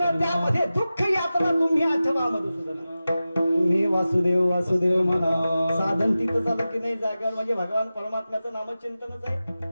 त्यामध्ये दुःख यातना तुम्ही आठवा मधुसूदन. तुम्ही वासुदेव वासुदेव म्हणा. साधन तिथं झालं की नाही जागा म्हणजे भगवान परमात्म्याचं नामचिंतनच आहे.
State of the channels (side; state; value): both; inverted; correlation -0.95